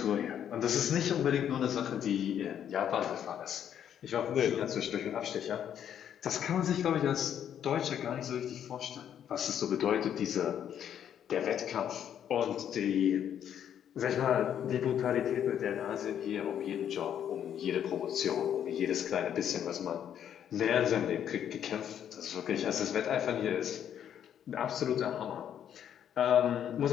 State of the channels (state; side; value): quieter; right; 9.5 dB